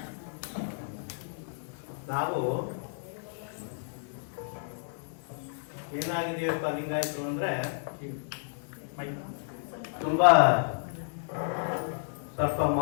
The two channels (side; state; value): right; silent; digital silence